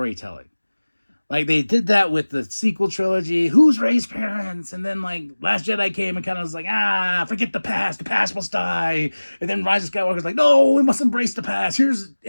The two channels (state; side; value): inverted; both; correlation -1.00